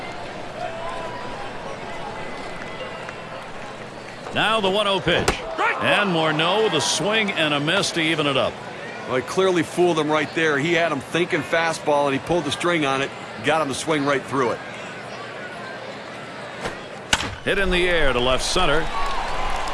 Now the 1-0 pitch. And Morneau with a swing and a miss to even it up. Well, he clearly fooled him right there. He had him thinking fastball, and he pulled the string on it, got him to swing right through it. Hit in the air to left center.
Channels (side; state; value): both; identical; correlation 1.00